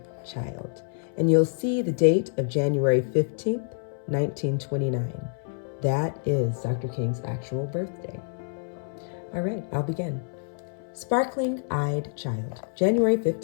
Child. And you'll see the date of January 15th, 1929. That is Dr. King's actual birthday. All right, I'll begin. Sparkling Eyed Child, January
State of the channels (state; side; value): silent; right; 60 dB below the other